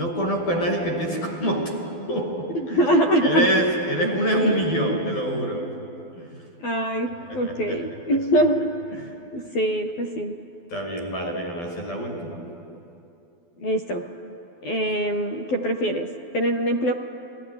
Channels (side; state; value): right; late; 12 ms